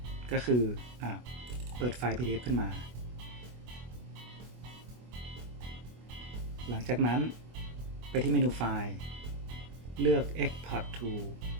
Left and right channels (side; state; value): left; late; 24 ms